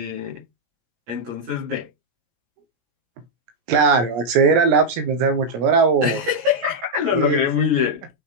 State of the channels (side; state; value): left; late; 17 ms